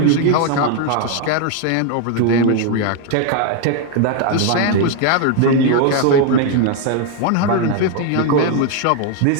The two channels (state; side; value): different; both; correlation 0.00